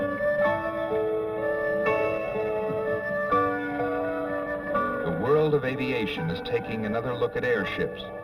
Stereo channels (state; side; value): identical; both; correlation 1.00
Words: Of aviation is taking another look at airships